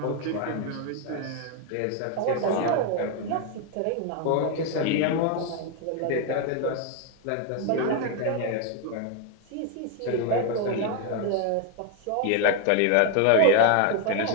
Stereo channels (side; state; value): both; different; correlation 0.01